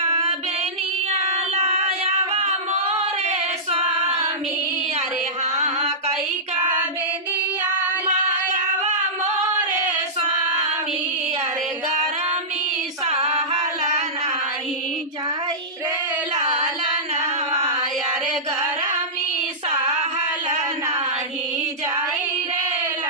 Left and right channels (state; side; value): normal; both; correlation -0.16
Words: बेनिया लायावा मोरे स्वामी, अरे हाँ कई का बेनिया लायावा मोरे स्वामी, अरे गरमी सहल नाही जाई रे लालनवा, अरे गरमी सहल नाही जाई रे